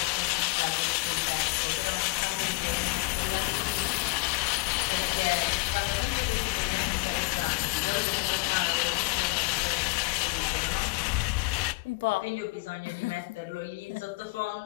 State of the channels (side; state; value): right; quieter; 27.4 dB